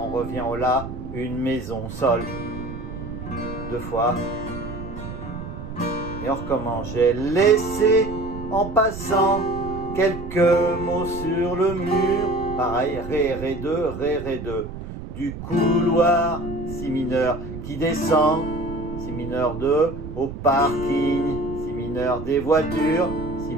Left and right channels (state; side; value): noise; right; rumble, 10 dB below the sound